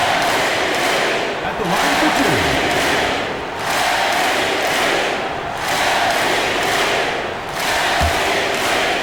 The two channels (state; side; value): identical; both; correlation 1.00